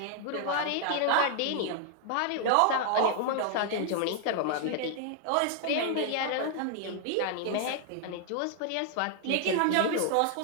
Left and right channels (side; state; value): both; different; correlation 0.00